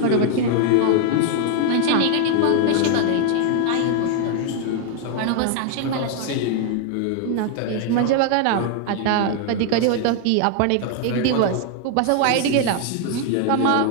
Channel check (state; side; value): different; both; correlation 0.00